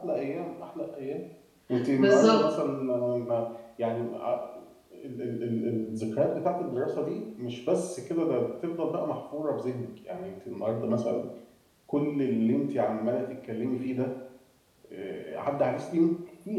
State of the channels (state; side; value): identical; both; correlation 1.00